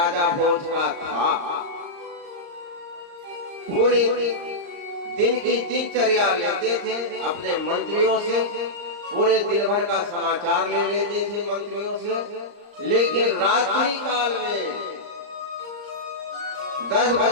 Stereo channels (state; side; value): late; left; 35 ms